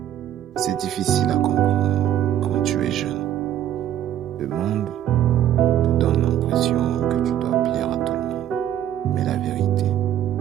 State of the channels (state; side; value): quieter; left; 11.2 dB